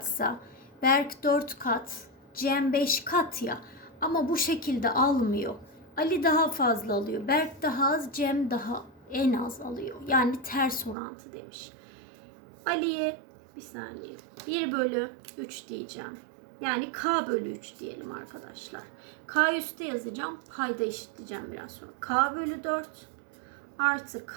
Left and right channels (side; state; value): left; drops out; at 11.0 s